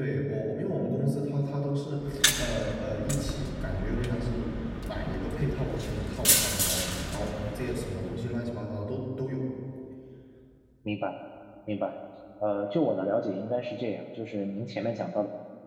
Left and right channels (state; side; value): identical; both; correlation 1.00